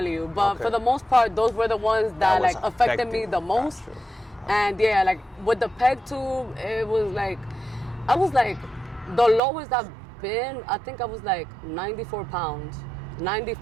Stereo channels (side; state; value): left; drops out; at 9.4 s